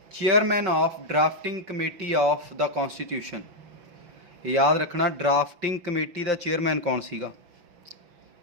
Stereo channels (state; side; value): late; left; 5.7 ms